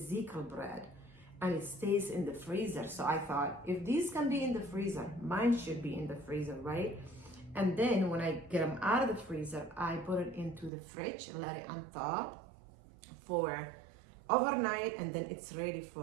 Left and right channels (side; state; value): left; drops out; at 10.7 s